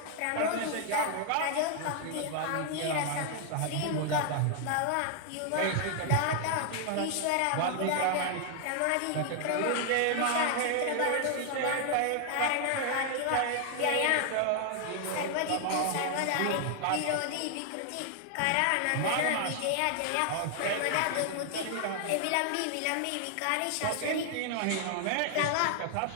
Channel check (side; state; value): both; different; correlation 0.00